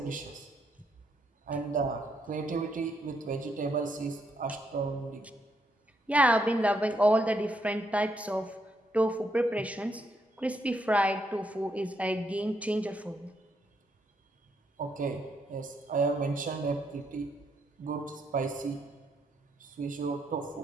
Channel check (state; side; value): normal; both; correlation 0.76